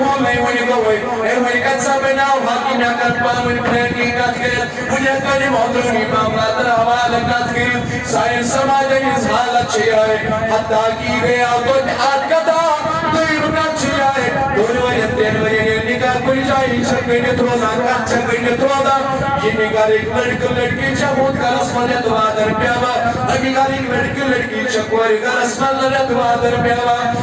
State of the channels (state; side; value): identical; both; correlation 1.00